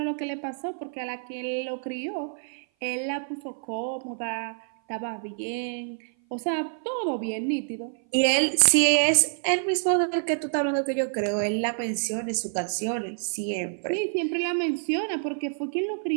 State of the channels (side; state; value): left; silent; 56 dB below the other